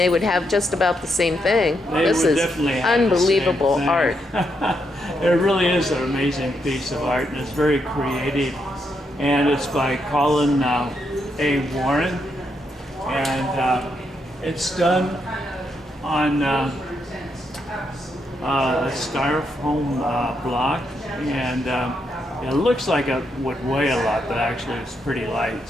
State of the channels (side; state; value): both; normal; correlation 0.79